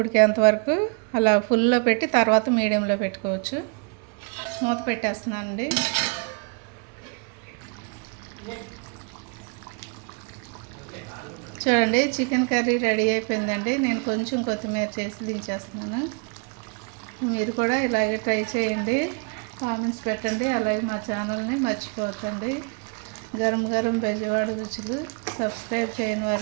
ఉడికేంత వరకు అలా ఫుల్లో పెట్టి తర్వాత మీడియంలో పెట్టుకోవచ్చు. మూత పెట్టేస్తున్నానండి. చూడండి, చికెన్ కర్రీ రెడీ అయిపోయిందండి. నేను కొంచెం కొత్తిమీర చేసి దించేస్తున్నాను. మీరు కూడా ఇలాగే ట్రై చేయండి, కామెంట్స్ పెట్టండి. అలాగే మా ఛానల్ని మర్చిపోకండి. గరం గరం బెజవాడ రుచులు. సబ్స్క్రైబ్ చేయని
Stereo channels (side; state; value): left; quieter; 36.2 dB